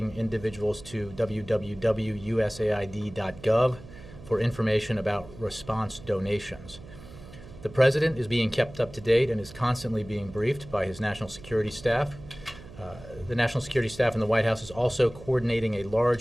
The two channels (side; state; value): right; noise; hum, 17 dB below the sound